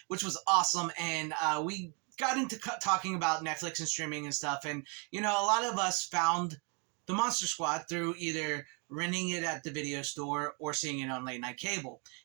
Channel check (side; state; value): left; quieter; 35.4 dB